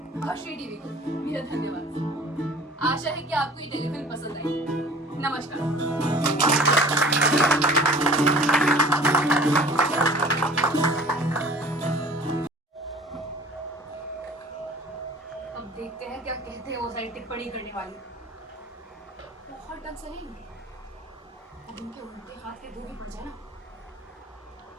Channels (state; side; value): normal; both; correlation 0.46